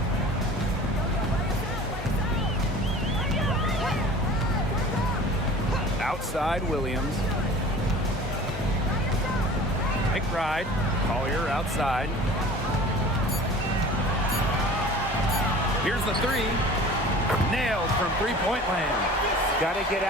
Outside Williams. McBride. Collier outside. Here's the 3. Nailed from three-point land. Got to get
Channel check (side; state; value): both; normal; correlation 0.43